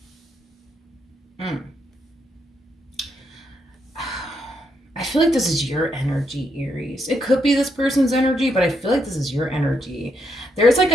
I feel like this is your energy, Aries. It could be this person's energy, but I feel like this is your energy. There's like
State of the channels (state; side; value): normal; both; correlation 0.78